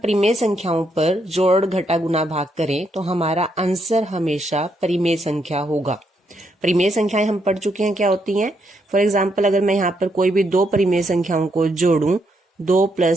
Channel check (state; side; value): normal; both; correlation 0.77